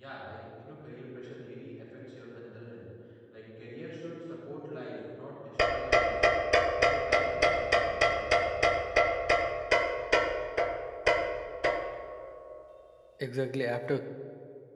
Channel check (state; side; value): identical; both; correlation 1.00